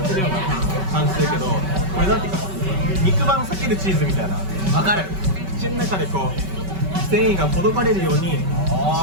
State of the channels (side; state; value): left; late; 5.2 ms